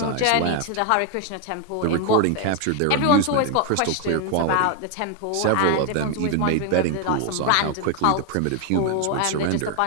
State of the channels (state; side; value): different; both; correlation 0.00